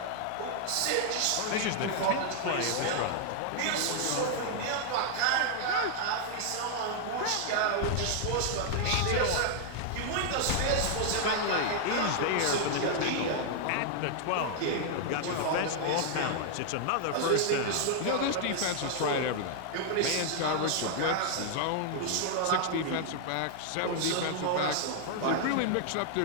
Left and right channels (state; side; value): different; both; correlation 0.00